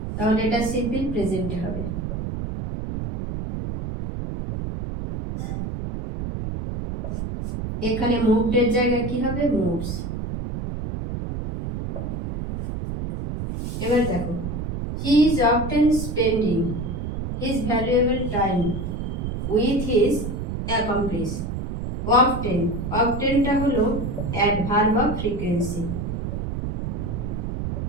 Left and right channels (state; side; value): noise; right; rumble, 4 dB below the sound